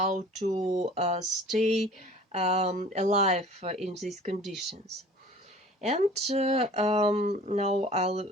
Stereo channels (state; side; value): normal; both; correlation 0.46